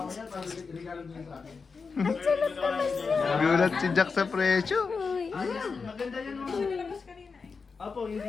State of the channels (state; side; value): quieter; right; 4.9 dB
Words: Nagulat si Jax sa presyo. Maganda yan mo. Apo,